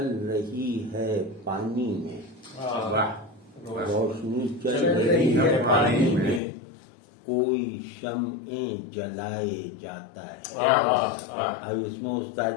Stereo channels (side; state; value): right; drops out; at 6.4 s